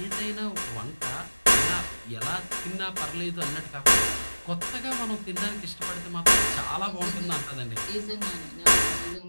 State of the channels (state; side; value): inverted; both; correlation -1.00